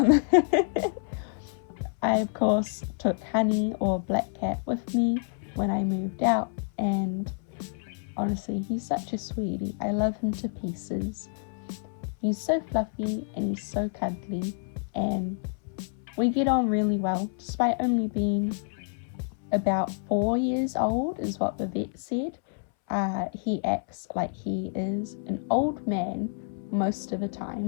I of course took Honey, or Black Cat, with me when I moved out, and honestly, he's such a sweetie. I love him to pieces. He's so fluffy and he's so cuddly, and we get on really well, despite only being about 4 years old, is what the vet said. He acts like he is an old man most of the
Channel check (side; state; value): right; silent; 59 dB below the other